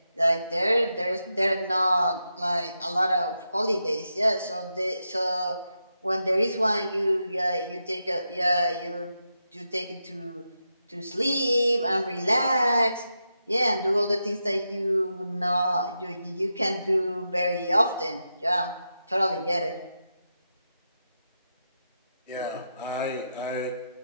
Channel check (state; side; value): inverted; both; correlation -0.87